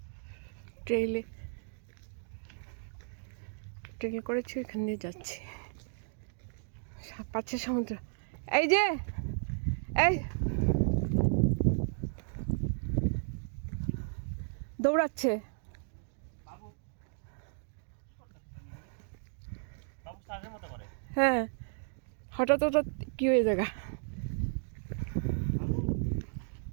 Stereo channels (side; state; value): left; silent; digital silence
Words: ট্রেল করেছি, এখান দিয়ে যাচ্ছি। পাচ্ছে সমুদ্র। এই যে এই দৌড়াচ্ছে। হ্যাঁ, হঠাৎ হঠাৎ কি হয়ে জায়গা।